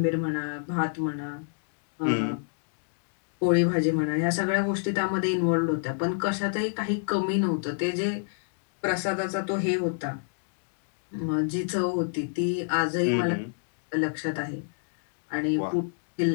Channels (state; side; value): silent; right; digital silence